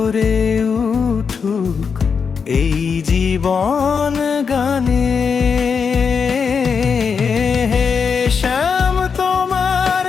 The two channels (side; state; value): right; quieter; 6.0 dB